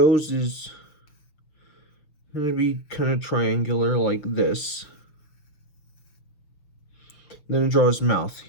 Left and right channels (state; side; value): late; right; 6.4 ms